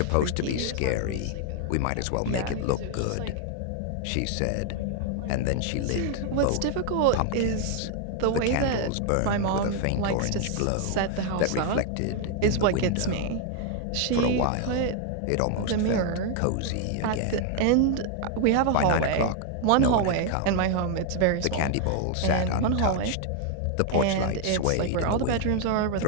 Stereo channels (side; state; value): both; different; correlation 0.00